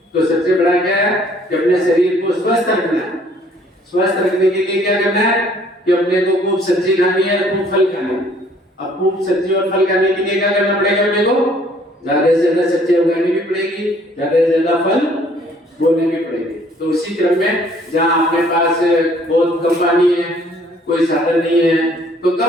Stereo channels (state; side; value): normal; both; correlation 0.59